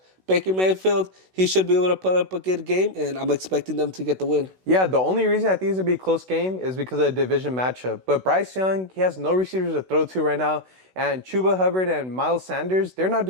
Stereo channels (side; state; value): left; late; 16 ms